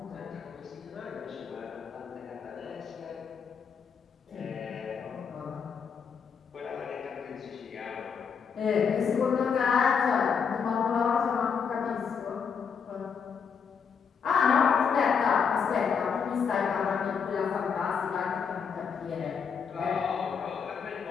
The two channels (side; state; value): right; quieter; 6.4 dB